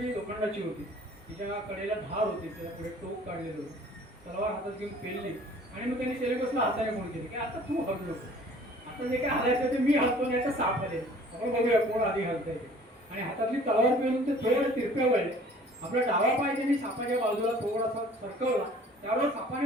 लोखंडाची होती. तिच्या कडेला धार होती, त्याला पुढे टोक काढलेलं होतं, तलवार हातात घेऊन पेलली आणि मग त्यांनी सेलिकसला हाताने फोन केली की आता तू हल्लो नको, आता जे काय हलायचं ते मी हलतो नाही तर साप हलेल, आपण बघूया कोण आधी हलतंय ते. आणि हातातली तलवार पेलून ते थोडे तिरप्या वळले. आपला डावा पाय त्यांनी सापाच्या बाजूला थोडासा सरकवला, त्यावेळेस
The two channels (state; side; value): normal; both; correlation 0.51